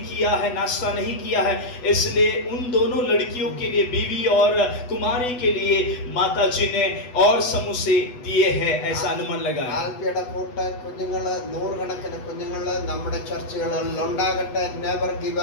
किया है, नाश्ता नहीं किया है, इसलिए उन दोनों लड़कियों के लिए, बीवी और कुमारी के लिए माता जी ने और समोसे दिए हैं, ऐसा अनुमान लगा. ആൽഫിയുടെ കൂട്ട് കുഞ്ഞുങ്ങള്, 100 കണക്കിന് കുഞ്ഞുങ്ങള് നമ്മുടെ ചർച്ചുകളിൽ ഉണ്ടാകട്ടെ. Never give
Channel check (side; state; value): right; late; 8.1 ms